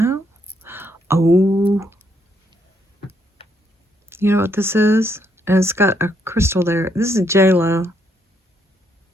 Oh, you know what this is? And it's got a crystal there. This is J-Lo.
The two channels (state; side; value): normal; both; correlation 0.74